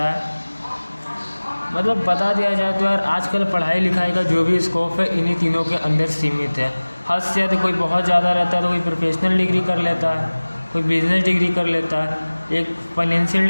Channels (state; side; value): inverted; both; correlation -1.00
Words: है। मतलब बता दिया जाए तो यार आजकल पढ़ाई लिखाई का जो भी स्कोप है इन्हीं तीनों के अंदर सीमित है। हद से ज़्यादा कोई बहुत ज़्यादा रहता है तो कोई प्रोफेशनल डिग्री कर लेता है, कोई बिजनेस डिग्री कर लेता है, एक फाइनेंशियल